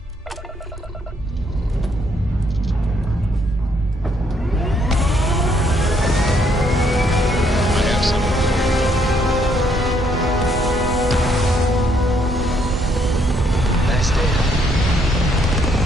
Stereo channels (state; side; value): normal; both; correlation 0.70